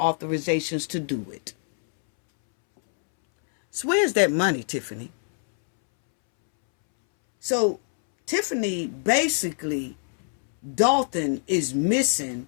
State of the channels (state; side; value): silent; right; 62 dB below the other